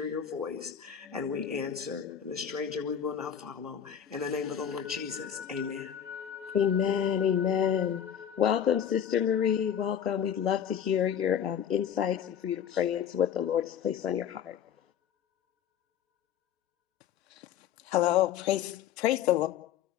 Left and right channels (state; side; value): quieter; right; 9.0 dB